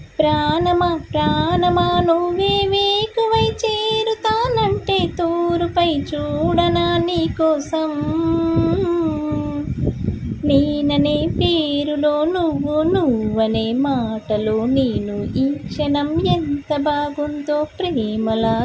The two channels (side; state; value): both; identical; correlation 1.00